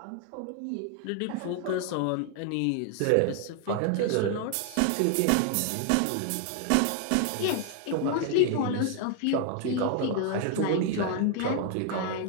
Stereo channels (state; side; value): different; both; correlation 0.00